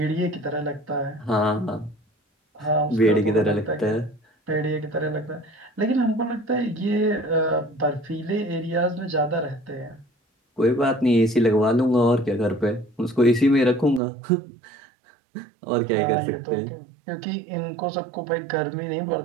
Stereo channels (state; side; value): drops out; left; at 14.0 s